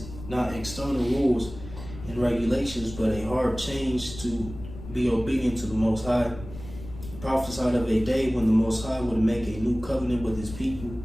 not external rules and regulations, but a hard change to be obedient to the Most High. He prophesied of a day when the Most High would make a new covenant with his people,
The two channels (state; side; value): noise; left; rumble, 13 dB below the sound